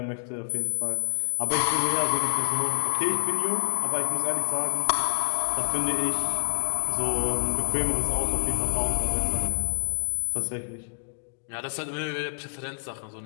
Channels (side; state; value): right; silent; digital silence